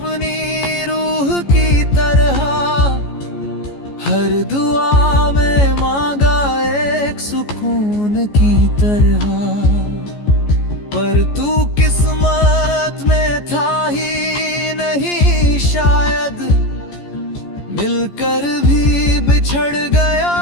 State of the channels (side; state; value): right; late; 14 ms